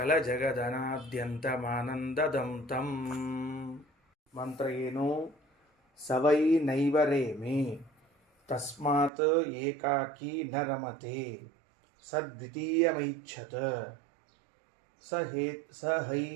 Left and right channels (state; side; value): drops out; left; at 9.1 s